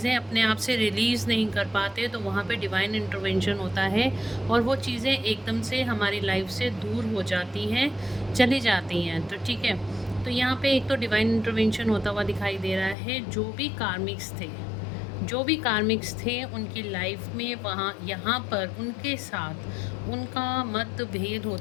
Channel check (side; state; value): right; drops out; at 13.0 s